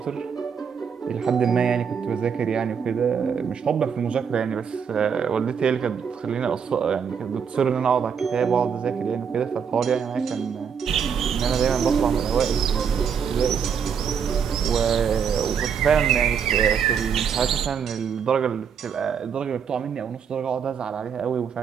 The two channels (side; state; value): left; quieter; 7.0 dB